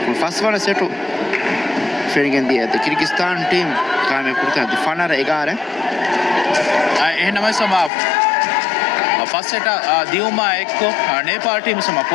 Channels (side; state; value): right; drops out; at 7.9 s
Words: first one setu feeling the Kyrgyzstan team kaamyab kurta the fanara egara එහෙනම සම first set දියුමා එක්ක Nepal team සම